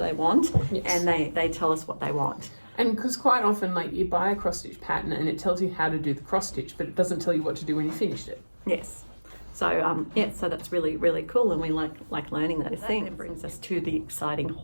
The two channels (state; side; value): inverted; both; correlation -1.00